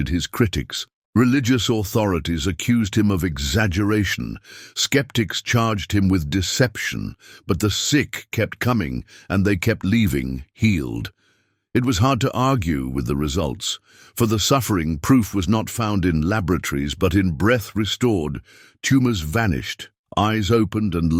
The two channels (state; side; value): identical; both; correlation 1.00